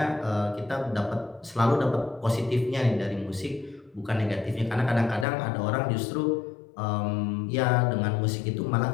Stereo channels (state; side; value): drops out; right; at 5.2 s